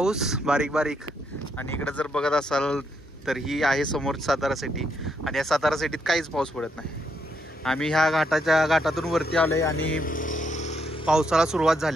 बारीक बारीक, आणि इकडे जर बघत असाल तर ही आहे समोर सातारा सिटी. आणि या सातारा सिटीत काहीच पाऊस पडत नाही. आम्ही ह्या घाटातून वरती आलोय आणि पावसाला सुरुवात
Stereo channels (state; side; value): normal; both; correlation 0.76